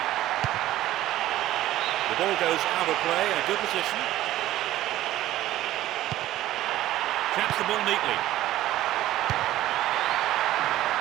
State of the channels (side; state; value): left; quieter; 14.5 dB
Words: The ball goes out of play in a good position. Traps the ball neatly.